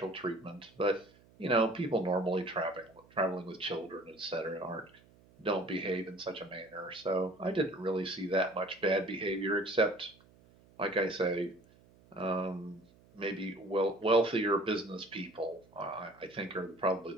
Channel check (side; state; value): right; noise; hum, 27 dB below the sound